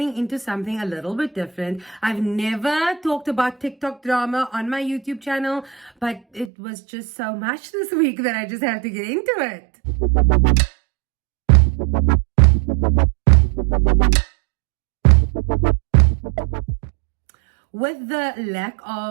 into something a little bit different. I've never talked about TikTok drama on my YouTube channel, but it was just so much this week that I just have to get into it. With the lack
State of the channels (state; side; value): drops out; left; at 6.5 s